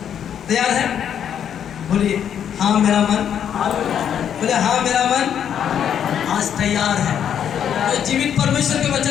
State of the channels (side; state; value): right; quieter; 8.9 dB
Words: तैयार है? बोलिए हाँ मेरा मन। बोले हाँ मेरा मन आज तैयार है तो जीवित परमेश्वर के